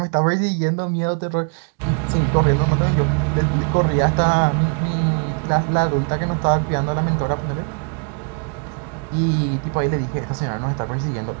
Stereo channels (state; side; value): quieter; left; 39.5 dB